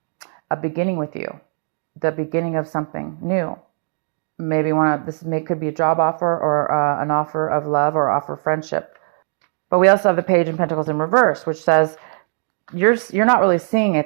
A beginning with you. The beginning of something new. Maybe could be a job offer or an offer of love or offer of friendship. But we also have the Page of Pentacles in reverse, which says you're not really seeing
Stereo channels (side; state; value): left; silent; digital silence